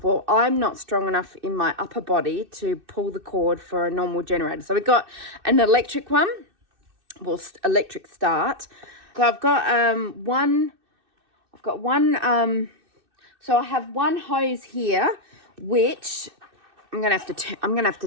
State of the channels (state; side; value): late; left; 2.6 ms